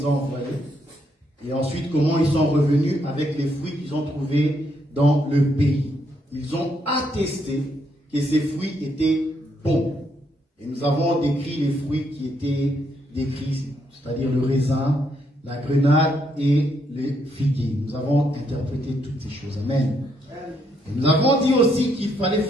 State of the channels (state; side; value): normal; both; correlation 0.75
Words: a envoyés. Et ensuite, comment ils sont revenus avec les fruits qu'ils ont trouvés dans le pays. Ils ont attesté que ces fruits étaient bons. Et nous avons décrit les fruits qui étaient décrits, c'est-à-dire le raisin, la grenade et le figuier. Nous avons interprété toutes ces choses. Amen. Et nous avons dit aussi qu'il fallait